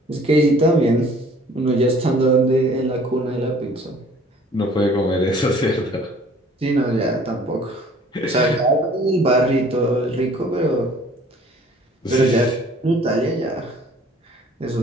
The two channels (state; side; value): normal; both; correlation 0.53